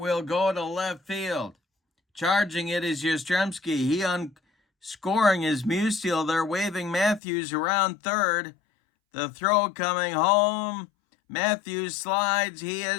go to left field. Charging it is Yastrzemski. Scoring is Musial. They're waving Matthews around third. The throw coming home. Matthews slides. He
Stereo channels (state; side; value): drops out; right; at 7.2 s